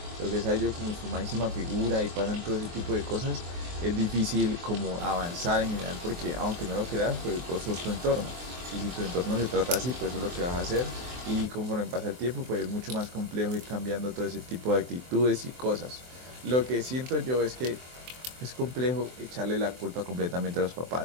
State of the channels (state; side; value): late; left; 23 ms